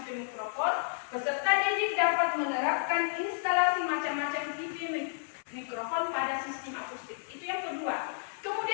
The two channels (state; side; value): silent; right; 57 dB below the other